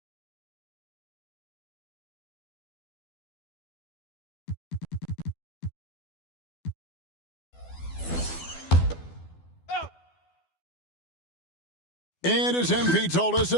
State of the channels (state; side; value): late; right; 12 ms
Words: And as MP told us